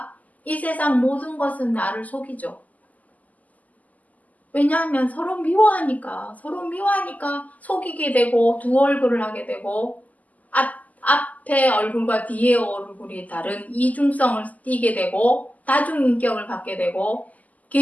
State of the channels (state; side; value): late; right; 0.077 ms